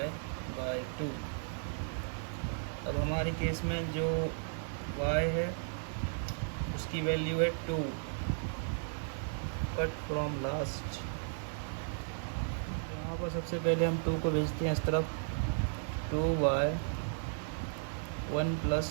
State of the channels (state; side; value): silent; left; digital silence